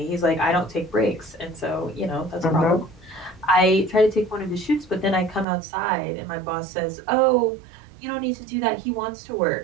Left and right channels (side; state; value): left; drops out; at 5.5 s